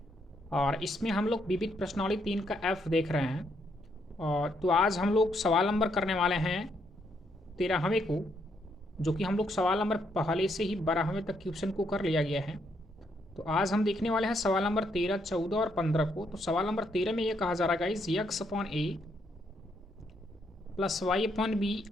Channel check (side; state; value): both; normal; correlation 0.75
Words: और इसमें हम लोग विविध प्रश्नावली 3 का एफ देख रहे हैं। और तो आज हम लोग सवाल नंबर करने वाले हैं 13वें को, जो कि हम लोग सवाल नंबर पहले से ही 12वें तक क्वेश्चन को कर लिया गया है। तो आज हम देखने वाले हैं सवाल नंबर 13, 14 और 15 को। तो सवाल नंबर 13 में ये कहा जा रहा है गाइस, यक्स अपॉन ए प्लस वाई अपॉन बी